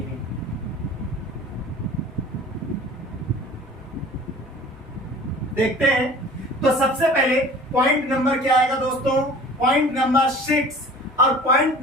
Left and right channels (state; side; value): normal; both; correlation 0.44